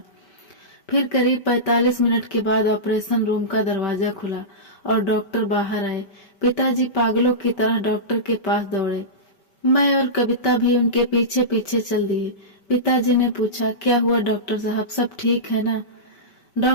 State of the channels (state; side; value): late; right; 5.2 ms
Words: फिर करीब 45 मिनट के बाद ऑपरेशन रूम का दरवाजा खुला और डॉक्टर बाहर आए। पिताजी पागलों की तरह डॉक्टर के पास दौड़े। मैं और कविता भी उनके पीछे पीछे चल दिए। पिताजी ने पूछा, क्या हुआ डॉक्टर साहब, सब ठीक है ना?